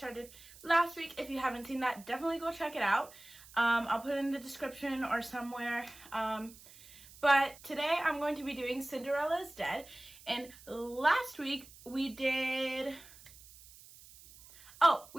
last week. If you haven't seen that, definitely go check it out. I'll put it in the description or somewhere. But today I'm going to be doing Cinderella is Dead. And last week we did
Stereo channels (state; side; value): noise; right; hiss, 21 dB below the sound